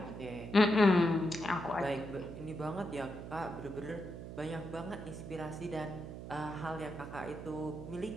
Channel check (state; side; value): noise; right; hum, 10 dB below the sound